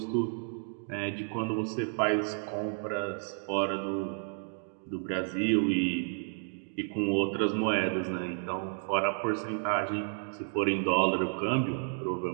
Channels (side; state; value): left; silent; 57 dB below the other